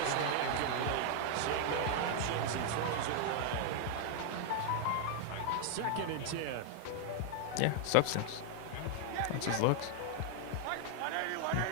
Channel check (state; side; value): different; both; correlation 0.00